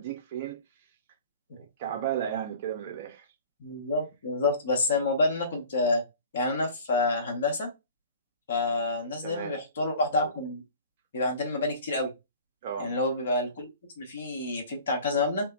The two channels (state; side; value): inverted; both; correlation -0.44